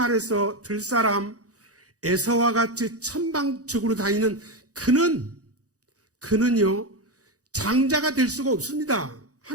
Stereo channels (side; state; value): left; late; 0.67 ms